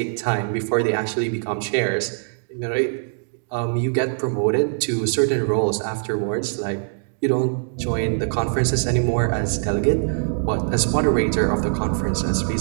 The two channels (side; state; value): left; silent; digital silence